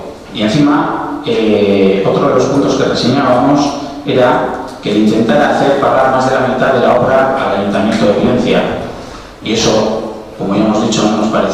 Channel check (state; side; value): identical; both; correlation 1.00